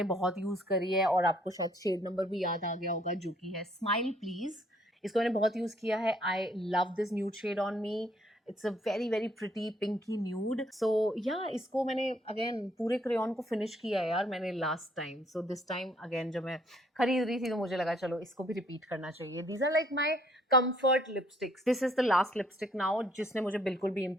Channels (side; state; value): both; normal; correlation 0.65